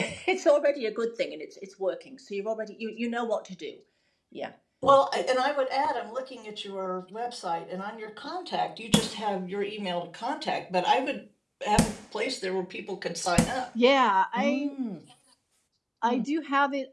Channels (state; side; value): identical; both; correlation 1.00